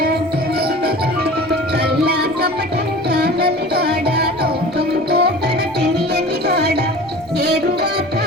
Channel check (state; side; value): normal; both; correlation 0.39